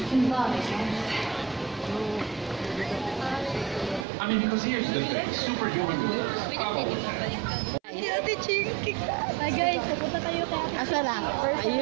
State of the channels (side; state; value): left; drops out; at 4.0 s